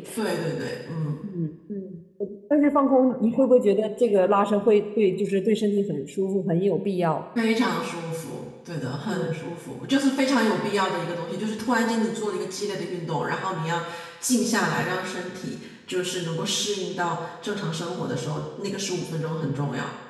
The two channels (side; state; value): both; identical; correlation 1.00